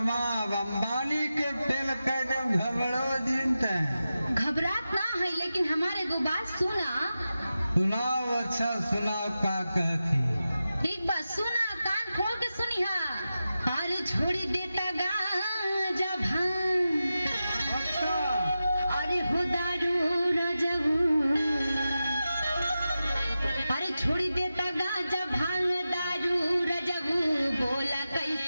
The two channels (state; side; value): inverted; both; correlation -0.92